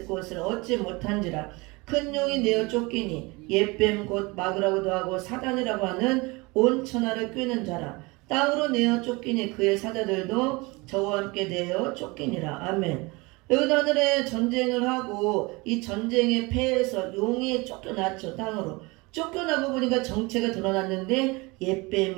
곳을 얻지 못한지라. 큰 용이 내어 쫓기니 옛뱀 곧 마귀라고도 하고 사단이라고 하는 온 천하를 꿰는 자라. 땅으로 내어 쫓기니 그의 사자들도 저와 함께 내어 쫓기니라. 아멘. 여기도 하늘에 전쟁을 하고 이 전쟁에 패해서 용이 쫓겨났죠. 땅으로 쫓겨나고 보니까 정체가 드러났는데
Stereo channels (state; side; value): quieter; left; 25.1 dB